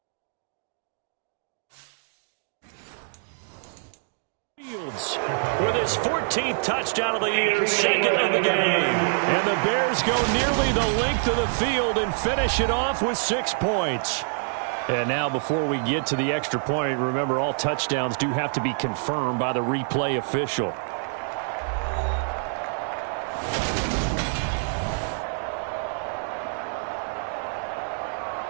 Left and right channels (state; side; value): silent; left; 61 dB below the other